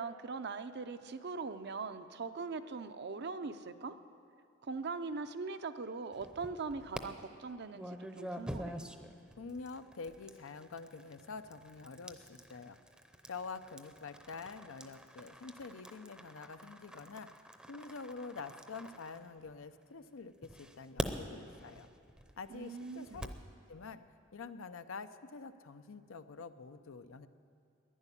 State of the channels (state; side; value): normal; both; correlation 0.13